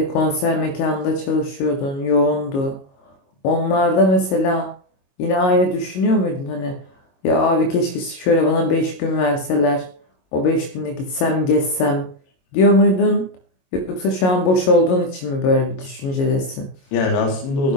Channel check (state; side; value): late; right; 22 ms